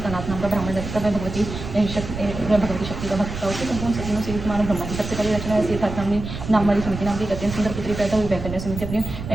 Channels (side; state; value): right; noise; rumble, 8 dB below the sound